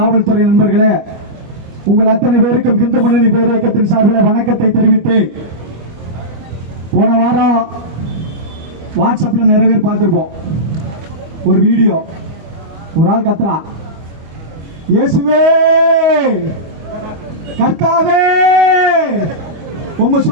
நண்பர்களே, உங்கள் அத்தனை பேருக்கும் இந்து முன்னணி பேரியக்கத்தின் சார்பில் வணக்கத்தை தெரிவித்து, போன வாரம் வாட்ஸ்அப்ல நிறைய பேர் பார்த்திருப்போம். ஒரு வீடியோ, ஒரு ஆள் கத்துறான், இயேசுவே கர்த்தாவே உங்க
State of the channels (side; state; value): left; late; 25 ms